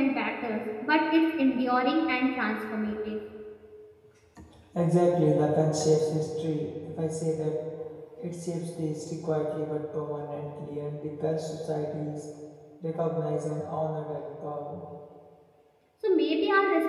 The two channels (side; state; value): both; identical; correlation 1.00